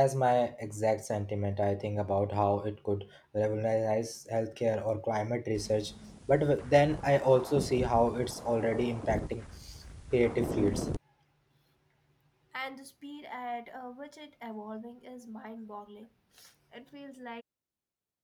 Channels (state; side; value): identical; both; correlation 1.00